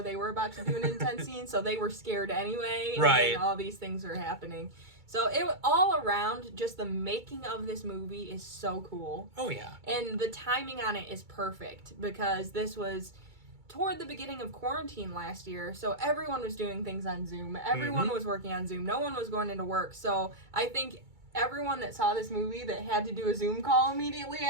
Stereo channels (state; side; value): late; left; 2.3 ms